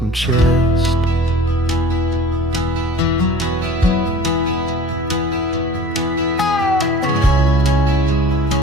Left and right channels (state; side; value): normal; both; correlation 0.44